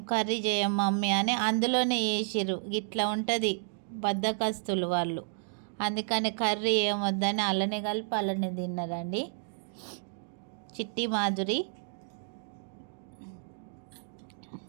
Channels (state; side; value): silent; left; digital silence